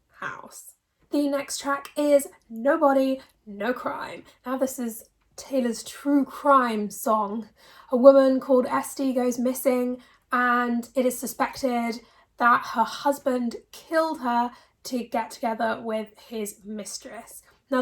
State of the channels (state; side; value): identical; both; correlation 1.00